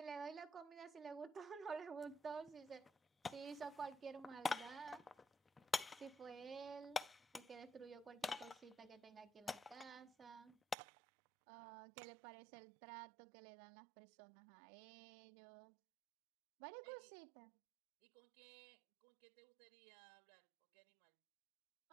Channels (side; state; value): left; drops out; at 10.8 s